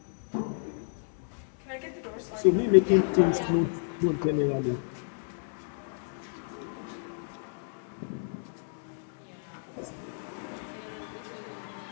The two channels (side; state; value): right; silent; digital silence